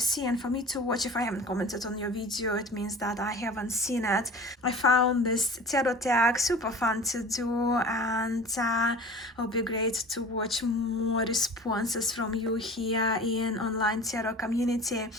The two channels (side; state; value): both; normal; correlation 0.40